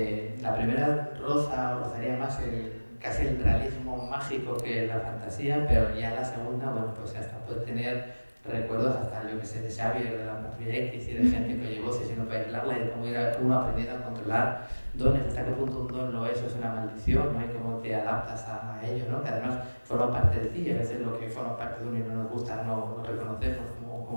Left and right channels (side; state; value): both; inverted; correlation -1.00